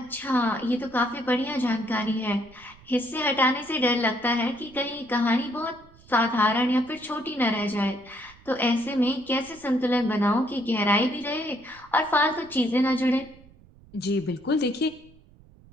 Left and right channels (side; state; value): right; noise; rumble, 25 dB below the sound